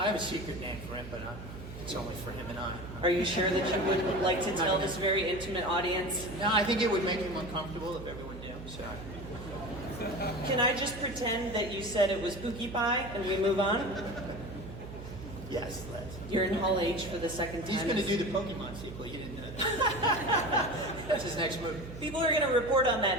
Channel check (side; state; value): right; noise; hum, 12 dB below the sound